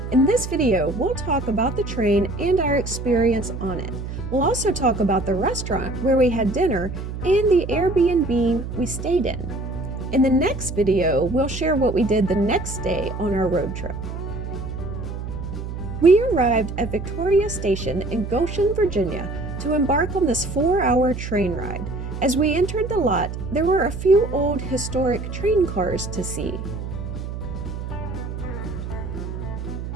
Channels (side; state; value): right; noise; hum, 7 dB below the sound